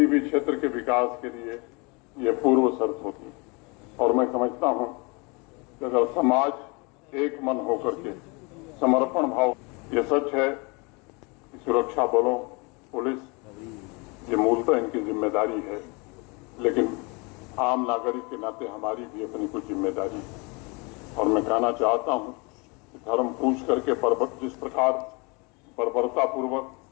भी क्षेत्र के विकास के लिए यह पूर्व शर्त होती और मैं समझता हूं कि अगर समाज एक मन होकर के समर्पण भाव, यह सच है कि सुरक्षा बलों, पुलिस, ये मूलतः इनकी जिम्मेदारी है, लेकिन आम नागरिक के नाते हमारी भी अपनी कुछ जिम्मेदारी है। और मैं कहना चाहता हूं कि धर्म पूछ करके जिस प्रकार बर्बरतापूर्वक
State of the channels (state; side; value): quieter; right; 29.2 dB